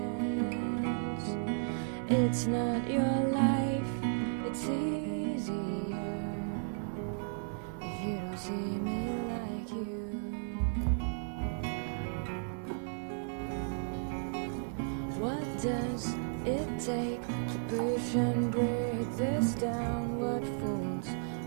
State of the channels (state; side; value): silent; left; 55 dB below the other